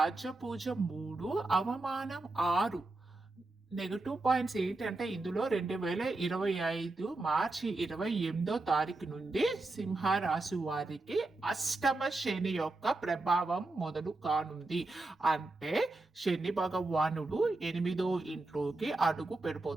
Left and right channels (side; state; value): left; quieter; 3.1 dB